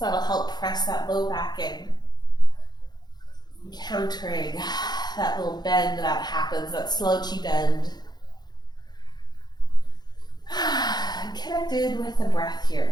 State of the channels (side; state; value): right; late; 0.20 ms